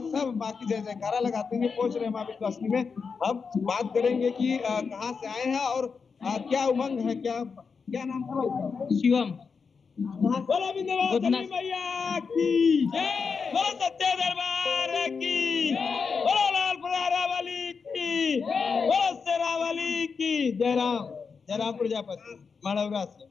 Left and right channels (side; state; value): right; quieter; 5.4 dB